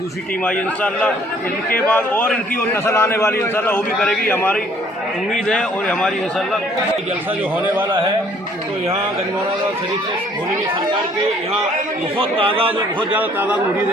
टीम आई इंशाअल्लाह। इनके बाद और इनकी और नस्ल आने वाली इंशाअल्लाह वो भी करेगी, हमारी उम्मीद है। और हमारी इंशाअल्लाह जलसा जो होने वाला है तो यहाँ गंजवाड़ा शरीफ से भोली में सरकार के यहाँ बहुत तादाद और बहुत ज़्यादा तादाद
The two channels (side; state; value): both; normal; correlation 0.60